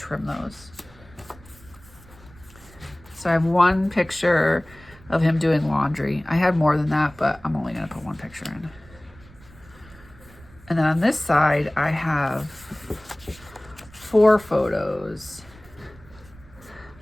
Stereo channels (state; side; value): noise; right; rumble, 23 dB below the sound